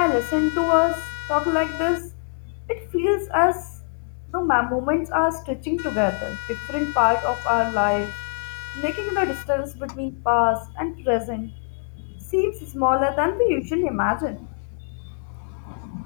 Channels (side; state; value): right; silent; 62 dB below the other